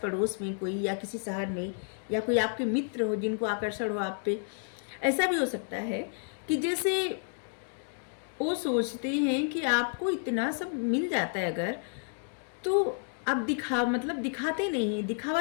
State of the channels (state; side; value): silent; right; 57 dB below the other